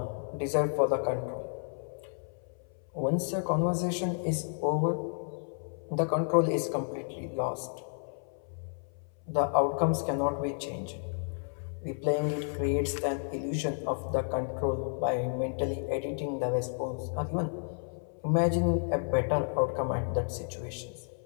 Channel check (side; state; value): right; silent; 57 dB below the other